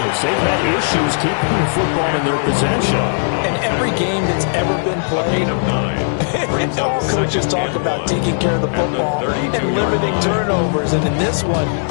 They've had issues keeping the football in their possession. And every game that's ever been played, all coaches talk about taking care of the football and limiting turnovers. And in this one,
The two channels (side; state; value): right; silent; digital silence